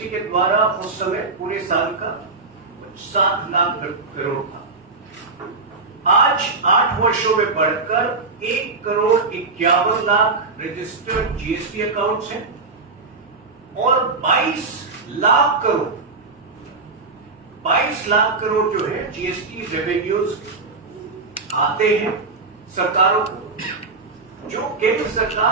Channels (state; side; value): quieter; left; 3.9 dB